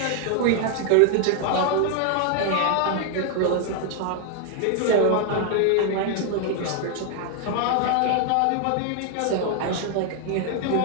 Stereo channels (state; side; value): different; both; correlation 0.00